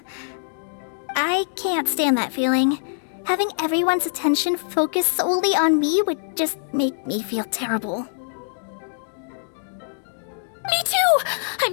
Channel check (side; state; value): right; silent; digital silence